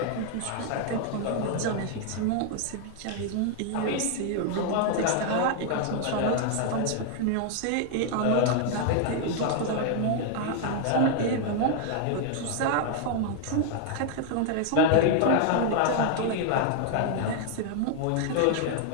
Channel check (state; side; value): different; both; correlation 0.00